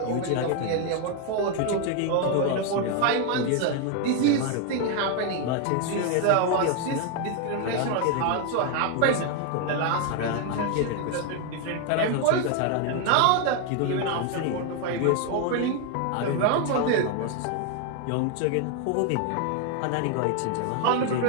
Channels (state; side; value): different; both; correlation 0.01